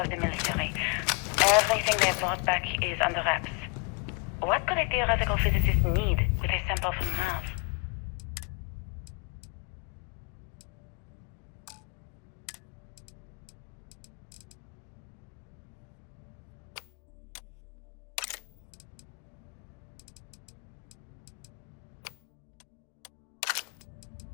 the military. Everything they brought back is under wraps. What could a theoretical physicist need with a sample from Mars?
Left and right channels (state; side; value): quieter; right; 33.4 dB